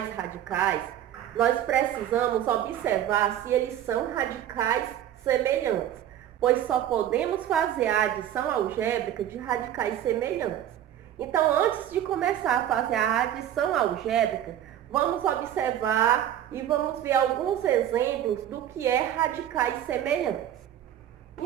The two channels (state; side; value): quieter; left; 11.1 dB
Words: radicais, nós precisamos observar se eles são radicais semelhantes, pois só podemos fazer a adição algébrica de radicais semelhantes. Então, antes de começar a fazer a adição algébrica, vamos observar e vamos ver alguns exemplos do que é radicais semelhantes.